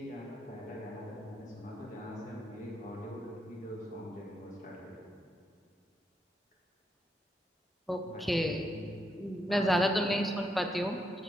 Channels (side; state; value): both; normal; correlation 0.79